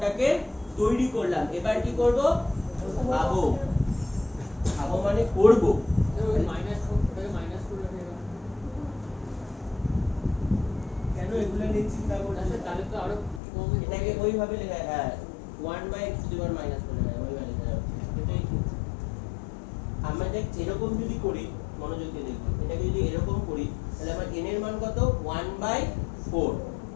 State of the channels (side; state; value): right; drops out; at 13.4 s